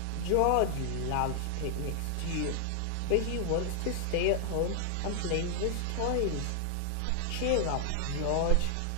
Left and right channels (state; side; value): different; both; correlation 0.00